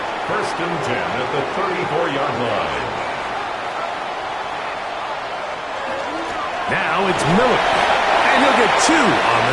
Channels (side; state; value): both; identical; correlation 1.00